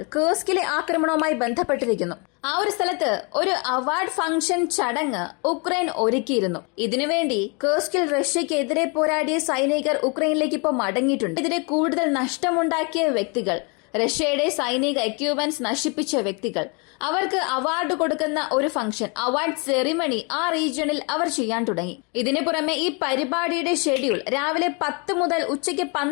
കുർസ്കിലെ ആക്രമണവുമായി ബന്ധപ്പെട്ടിരിക്കുന്നു. ആ ഒരു സ്ഥലത്ത് ഒരു അവാർഡ് ഫംഗ്ഷൻ ചടങ്ങ് ഉക്രൈൻ ഒരുക്കിയിരുന്നു. ഇതിനുവേണ്ടി കുർസ്കിൽ റഷ്യക്കെതിരെ പോരാടിയ സൈനികർ ഉക്രൈനിലേക്ക് ഇപ്പോൾ മടങ്ങിയിട്ടുണ്ട്. ഇതിനെ കൂടുതൽ നഷ്ടമുണ്ടാക്കിയ വ്യക്തികൾ, റഷ്യയുടെ സൈനിക എക്യുപ്മെന്റ്സ് നശിപ്പിച്ച വ്യക്തികൾ, അവർക്ക് അവാർഡ് കൊടുക്കുന്ന ഒരു ഫംഗ്ഷൻ, അവാർഡ് സെറിമണി ആ റീജിയണിൽ അവർ ചെയ്യാൻ തുടങ്ങി. ഇതിനു പുറമെ ഈ പരിപാടിയുടെ ഷെഡ്യൂൾ രാവിലെ 10 മുതൽ ഉച്ചയ്ക്ക്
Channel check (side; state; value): right; quieter; 32.9 dB